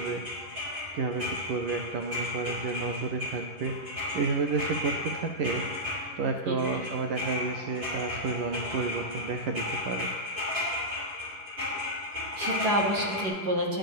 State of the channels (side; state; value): left; late; 11 ms